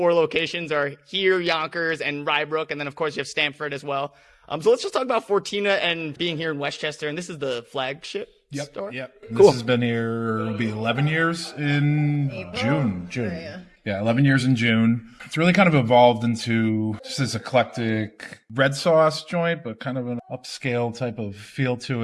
locations are here, Yonkers, and Rybrook. And then of course you have Stamford as well. So let's just talk about Fortina and being here in Westchester. And this is the flagship store? Yep. Cool. This has been here, it'll be 11 years in June. Oh, Yeah, 11 years in June. It's really kind of evolved into just this eclectic red sauce joint, but kind of an upscale type of feel to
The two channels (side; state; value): both; identical; correlation 1.00